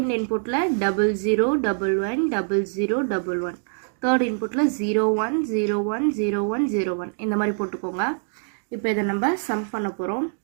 இன்புட்டில் 00111111, தேர்ட் இன்புட்டில் 01010101 இந்த மாதிரி போட்டுக்கோங்க. இப்போ இதை நம்ம சம் பண்ண போகிறோம்.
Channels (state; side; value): silent; left; digital silence